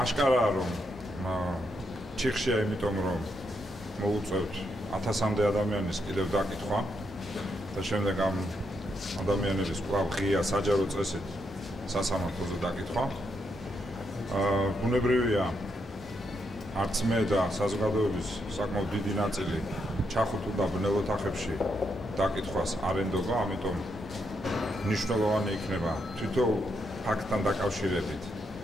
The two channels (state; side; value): normal; both; correlation 0.80